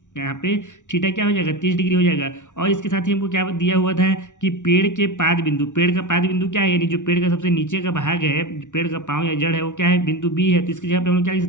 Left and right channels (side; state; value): right; late; 0.86 ms